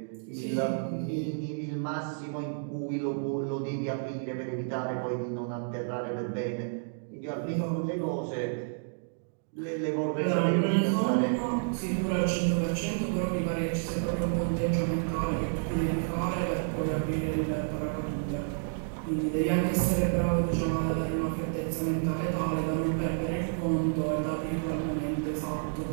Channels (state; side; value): silent; left; digital silence